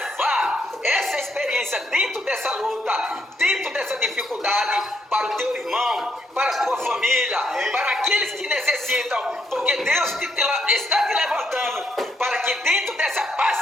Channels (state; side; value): normal; both; correlation 0.75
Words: essa experiência dentro dessa luta, dentro dessa dificuldade, para o teu irmão, para a tua família, para aqueles que necessitam, porque Deus está te levantando para que dentro dessa